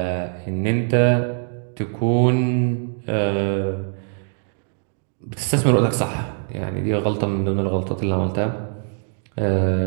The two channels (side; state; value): left; silent; digital silence